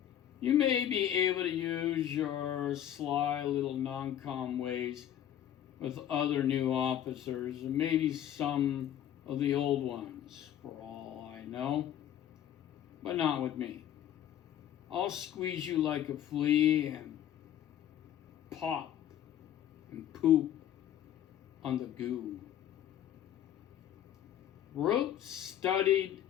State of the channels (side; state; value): right; quieter; 10.9 dB